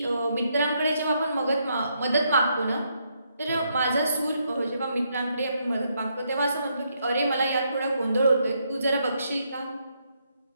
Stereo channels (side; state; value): both; inverted; correlation -0.76